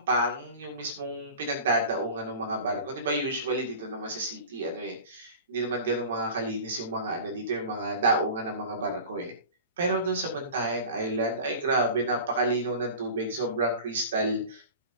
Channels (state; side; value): inverted; both; correlation -0.37